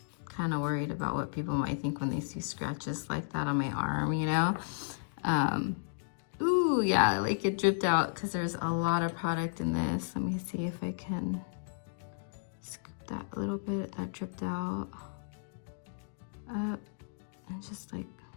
kind of worried about what people might think when they see scratches like that on my arm, you know? Ooh, yeah, like it dripped out because there's a lot of product in this. Let me see if I can scoop that little bit that dripped out up and just like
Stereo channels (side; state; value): right; silent; digital silence